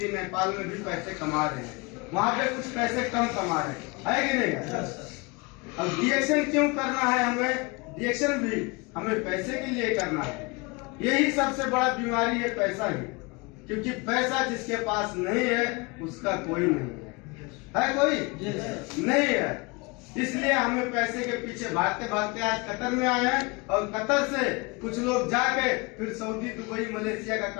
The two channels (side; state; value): right; quieter; 27.3 dB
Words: नेपाल में भी पैसे कमा रहे हैं, वहाँ पे कुछ पैसे कम कमा रहे हैं, है कि नहीं? अब रिएक्शन क्यों करना है हमें? रिएक्शन भी हमें पैसे के लिए करना है। यही सबसे बड़ा बीमारी है, पैसा ही। क्योंकि पैसा जिसके पास नहीं है उसका कोई नहीं है कोई नहीं है। इसलिए हमें पैसे के पीछे भागते भागते आज कतर में आए हैं। और कतर से कुछ लोग जाके फिर सऊदी, दुबई, मलेशिया का